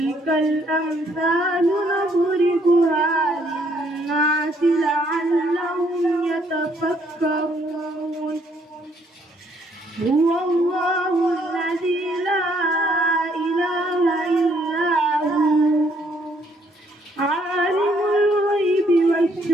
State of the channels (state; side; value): normal; both; correlation 0.68